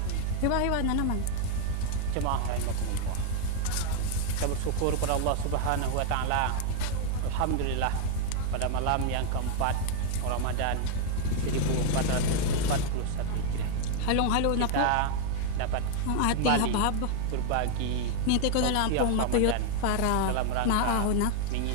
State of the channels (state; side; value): different; both; correlation 0.00